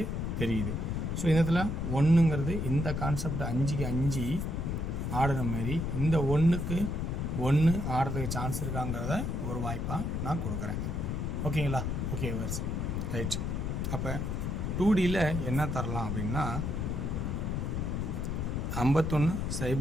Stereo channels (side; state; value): left; noise; rumble, 1 dB below the sound